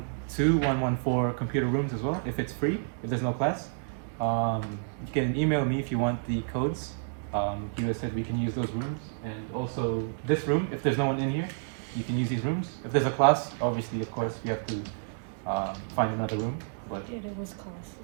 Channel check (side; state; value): left; silent; digital silence